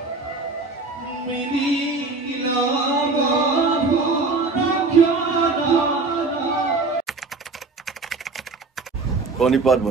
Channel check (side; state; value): left; quieter; 3.8 dB